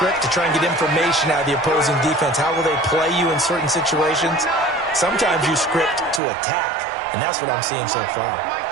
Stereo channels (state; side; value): drops out; left; at 6.2 s